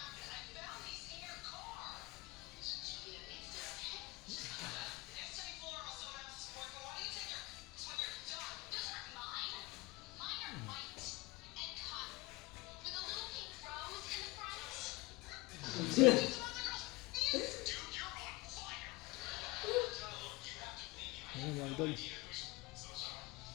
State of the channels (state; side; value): quieter; right; 22.8 dB